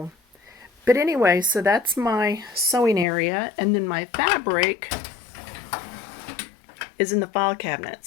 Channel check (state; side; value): drops out; right; at 3.1 s